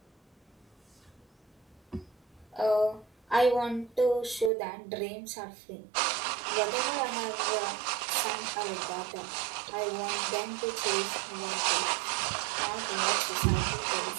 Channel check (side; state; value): left; drops out; at 4.5 s